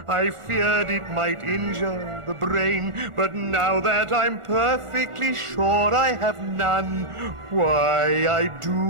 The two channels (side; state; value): left; late; 1.4 ms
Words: I feared it might injure the brain, but now that I'm perfectly sure I have none, why, I